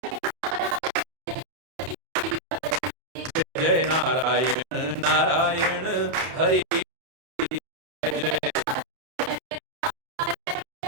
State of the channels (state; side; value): late; left; 31 ms